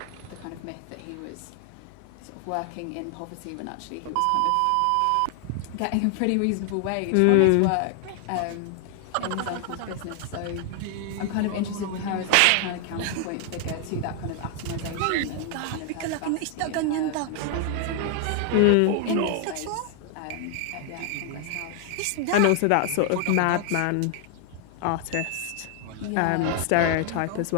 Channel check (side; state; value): both; different; correlation 0.00